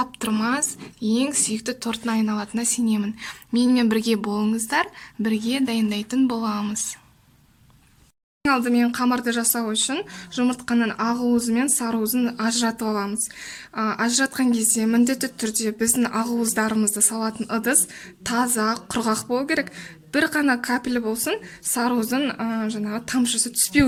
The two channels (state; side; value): identical; both; correlation 1.00